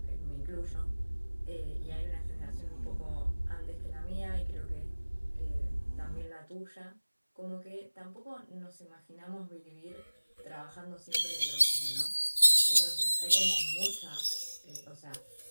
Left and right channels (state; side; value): inverted; both; correlation -1.00